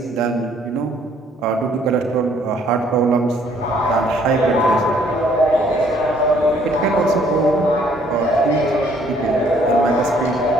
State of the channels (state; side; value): normal; both; correlation 0.63